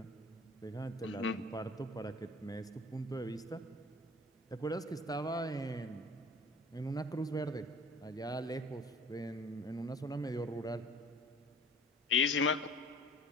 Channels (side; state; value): both; normal; correlation 0.46